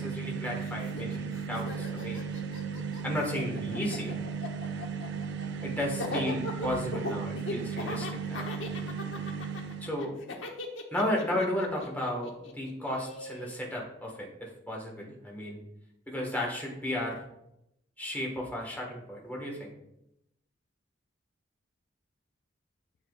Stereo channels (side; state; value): both; normal; correlation 0.45